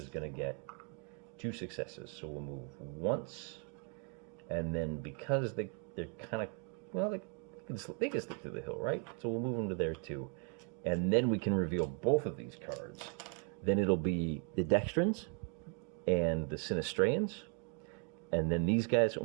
going to get 2 successes. So we'll move once. And then because they're kind of, well, they can stick to the hill, right? So we'll move them to there too. And then we can reveal both of these cards. Then it'll be the Dextrans and the Sinistreans. And then these guys,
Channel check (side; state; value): left; quieter; 39.2 dB